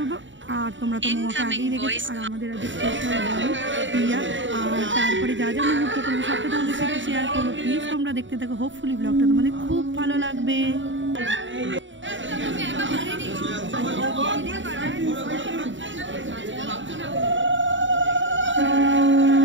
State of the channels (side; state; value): left; late; 0.55 ms